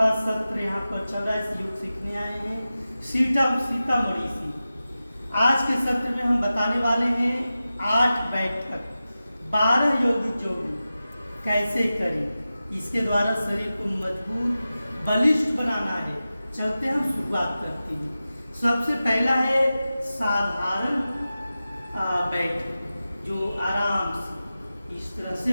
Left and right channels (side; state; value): both; inverted; correlation -0.94